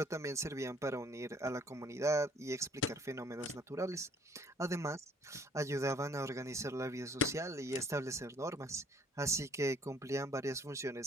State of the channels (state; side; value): normal; both; correlation 0.60